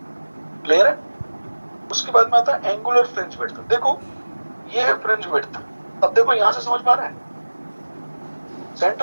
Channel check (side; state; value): both; inverted; correlation -1.00